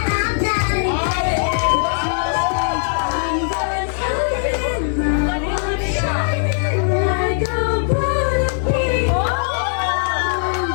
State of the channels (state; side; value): silent; right; digital silence